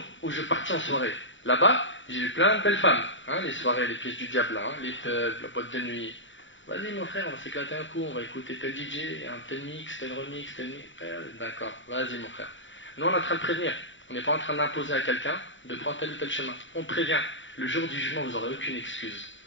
où je partis en soirée. Là-bas, j'ai vu plein de belles femmes, hein, les soirées, les pièces du diable, hein, les pubs, la boîte de nuit. Vas-y mon frère, on va s'éclater un coup, on va écouter tel DJ, un tel mix, tel remix, tel mix. D'accord, vas-y mon frère. Nous on est en train de prévenir, on n'est pas en train d'imposer à quelqu'un de prendre tel ou tel chemin. On prévient, le jour du jugement vous n'aurez aucune excuse.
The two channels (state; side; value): late; right; 0.55 ms